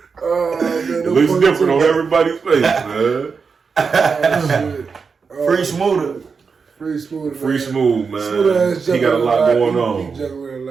It looks different on everybody's face, man. Free Smoother. Free Smooth, Free Smooth, man. Smooth he got a lot going on. He juggling a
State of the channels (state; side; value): quieter; left; 5.3 dB